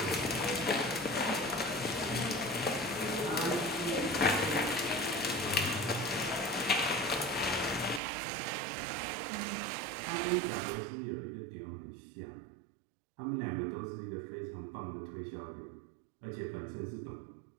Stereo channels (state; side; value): drops out; left; at 8.0 s